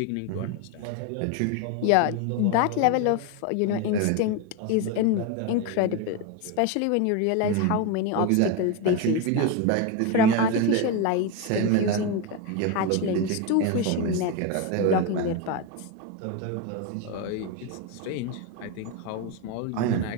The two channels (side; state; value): both; different; correlation 0.03